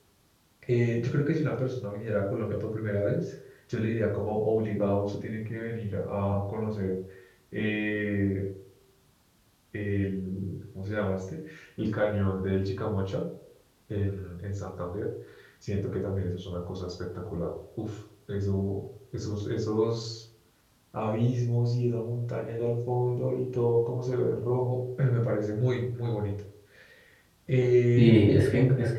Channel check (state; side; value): identical; both; correlation 1.00